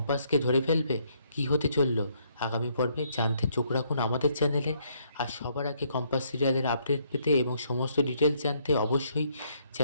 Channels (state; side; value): inverted; both; correlation -0.70